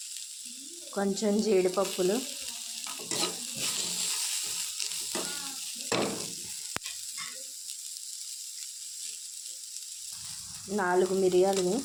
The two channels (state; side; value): identical; both; correlation 1.00